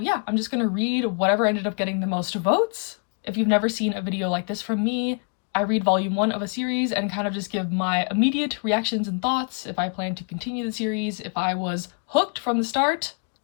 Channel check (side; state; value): right; quieter; 39.2 dB